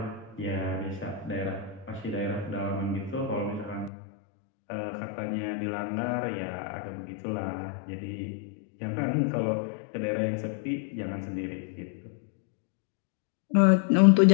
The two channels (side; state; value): right; drops out; at 3.9 s